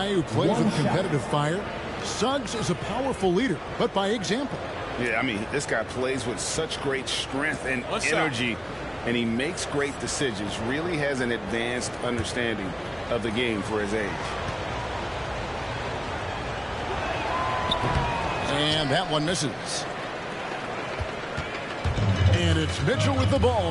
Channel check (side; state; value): both; identical; correlation 1.00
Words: who plays with competitive fire. Suggs is a powerful leader, but by example. Yeah, I mean, this guy plays with such great strength and energy, and he makes great decisions. Really has an advanced understanding of the game for his age. And that one misses. And it's Mitchell with the